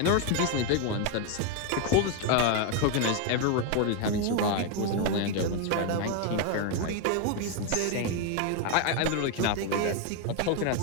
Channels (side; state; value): both; different; correlation 0.01